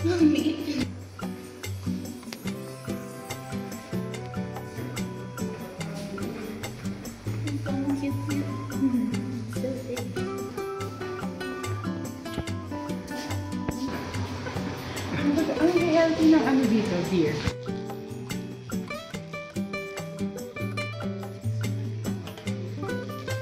Ang healthy ng ano dito, deer.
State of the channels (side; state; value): both; identical; correlation 1.00